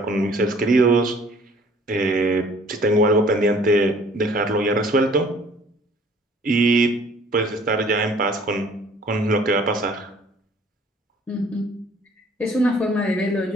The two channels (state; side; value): normal; both; correlation 0.55